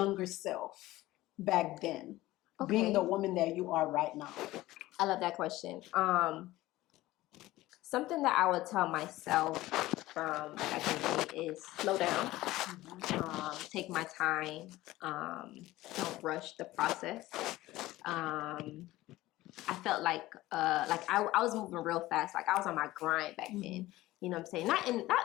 self back then, being Okay. the woman that you are right now? I love that question. Something that I would tell myself from back in the day is slow down, take my time, don't rush the process. I felt like I was moving real fast, like I was on my grind back then. You know what I'm saying?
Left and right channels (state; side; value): quieter; right; 17.2 dB